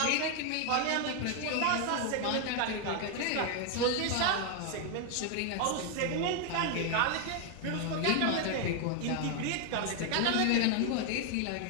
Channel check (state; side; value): different; both; correlation 0.00